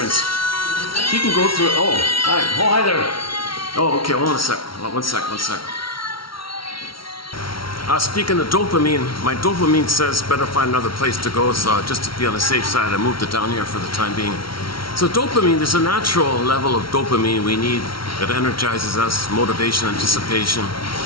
he can go through, hi there. Oh, okay, hold on a sec, one sec. Speaking of dopamine, my dopamine says better find another place to go, so just to be on the safe side, I moved it down here for the time being. So dopamine, there's a natural level of dopamine we need that energizes us, motivation, anticipation.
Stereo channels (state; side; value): late; right; 0.74 ms